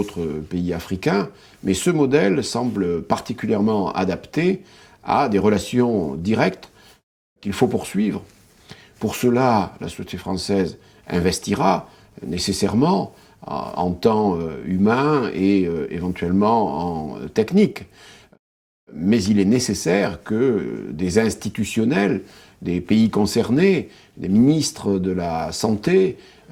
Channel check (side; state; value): both; identical; correlation 1.00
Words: pays africains, mais ce modèle semble particulièrement adapté à des relations directes qu'il faut poursuivre. Pour cela, la société française investira nécessairement en temps humain et éventuellement en technique. Mais il est nécessaire que des institutionnels, des pays concernés, des ministres de la Santé,